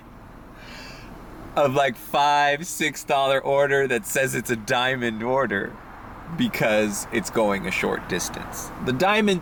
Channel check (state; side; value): identical; both; correlation 1.00